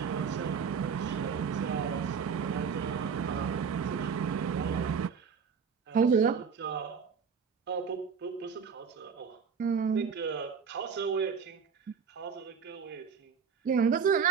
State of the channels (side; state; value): left; quieter; 6.3 dB